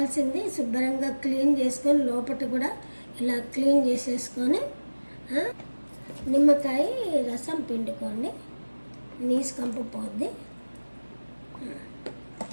శుభ్రంగా క్లీన్ చేసుకొని లోపల కూడా ఇలా క్లీన్ చేసేసుకొని నిమ్మకాయ రసం పిండుకోండి, నీసు కంపు పోద్ది.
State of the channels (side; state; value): both; inverted; correlation -1.00